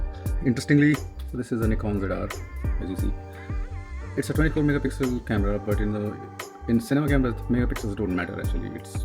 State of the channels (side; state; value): both; identical; correlation 1.00